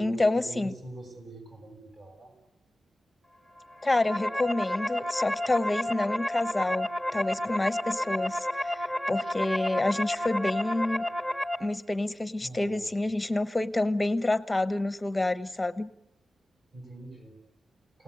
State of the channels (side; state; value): both; normal; correlation 0.98